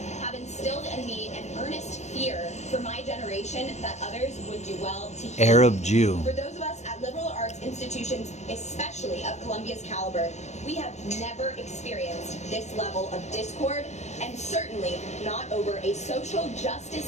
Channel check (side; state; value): right; late; 0.33 ms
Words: have instilled in me an earnest fear for my generation that others would do well to hear. Arab Jew. For those of us at liberal arts institutions, especially of Columbia's caliber, we have never experienced this level of discord, and certainly not over a social